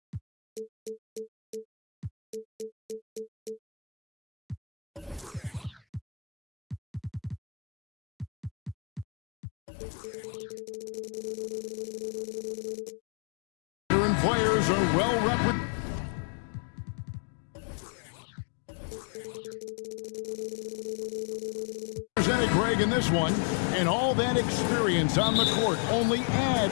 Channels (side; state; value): right; drops out; at 9.1 s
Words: Players are well represented, Greg, in this one, and all that experience on the court only